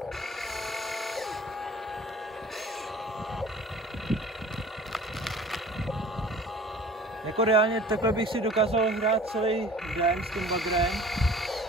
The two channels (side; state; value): both; normal; correlation 0.45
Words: jako reálně takhle bych si dokázal hrát celý den s tím bagrem